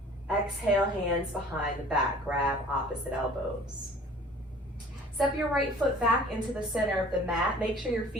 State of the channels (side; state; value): both; normal; correlation 0.49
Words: Exhale, hands behind the back, grab opposite elbows. Step your right foot back into the center of the mat. Make sure your